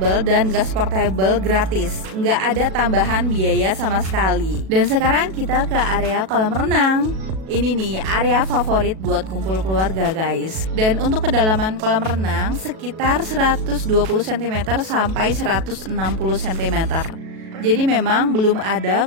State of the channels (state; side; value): late; left; 37 ms